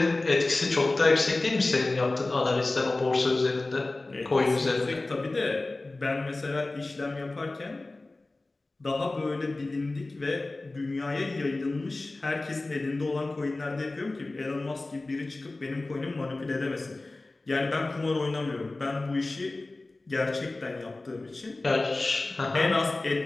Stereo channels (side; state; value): right; quieter; 3.1 dB